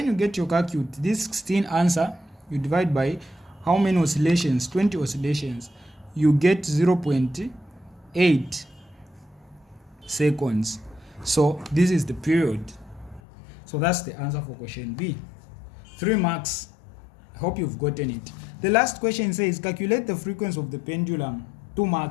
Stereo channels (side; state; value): right; drops out; at 13.2 s